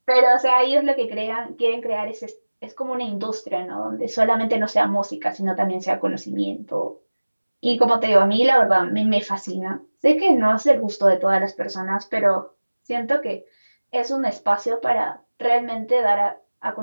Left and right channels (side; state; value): both; inverted; correlation -1.00